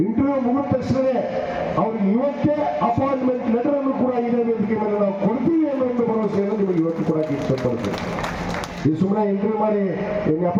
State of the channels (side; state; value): both; identical; correlation 1.00